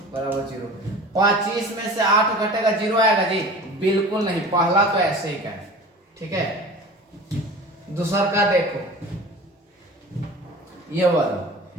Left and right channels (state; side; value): normal; both; correlation 0.39